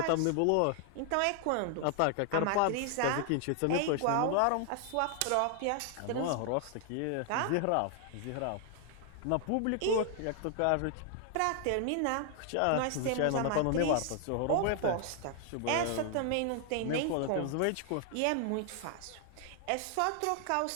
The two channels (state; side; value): different; both; correlation 0.00